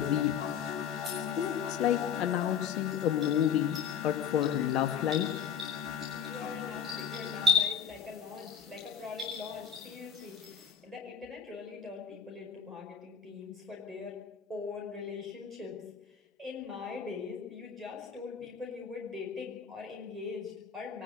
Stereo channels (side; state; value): right; quieter; 7.6 dB